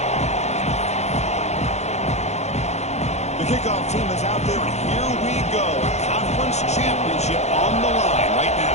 Kickoff team is out there, and here we go. A conference championship on the line right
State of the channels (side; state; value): right; late; 0.32 ms